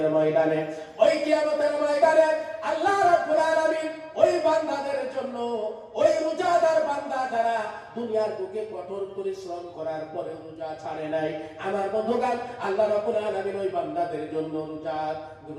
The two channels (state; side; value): identical; both; correlation 1.00